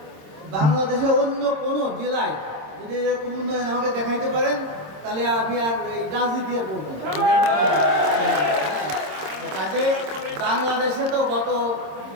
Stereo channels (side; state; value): left; late; 26 ms